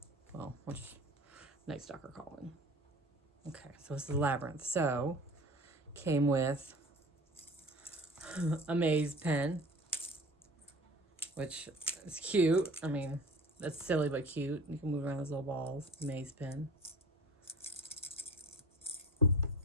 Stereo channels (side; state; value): both; normal; correlation 0.40